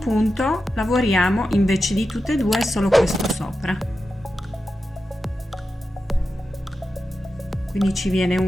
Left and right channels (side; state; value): both; normal; correlation 0.91